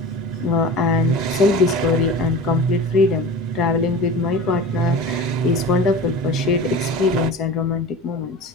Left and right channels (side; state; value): both; normal; correlation 0.34